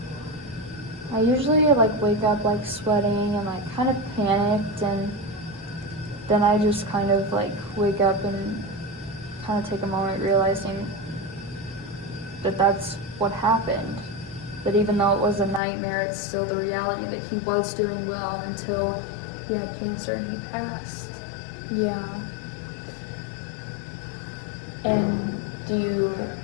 I usually like wake up like sweating and like kind of panicked, and then I just kind of like wake up and kind of take a moment realizing that that's what happened. That even though it was a nightmare, it's still the reality that he was doing well until he had cancer and he passed. Yeah. And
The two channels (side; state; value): right; drops out; at 15.6 s